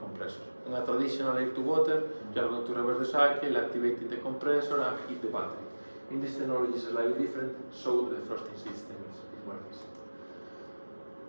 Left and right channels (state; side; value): inverted; both; correlation -1.00